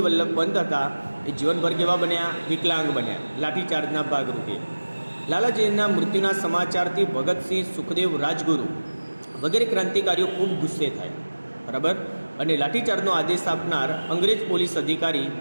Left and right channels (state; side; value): inverted; both; correlation -1.00